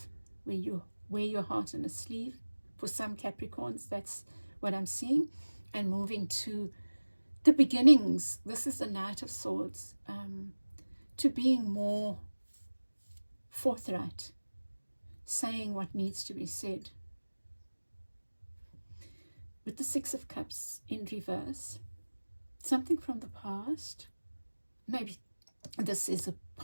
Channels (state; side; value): inverted; both; correlation -1.00